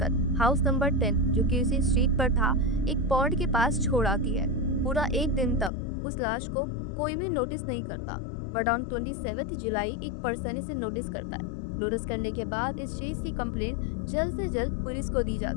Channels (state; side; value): drops out; right; at 5.7 s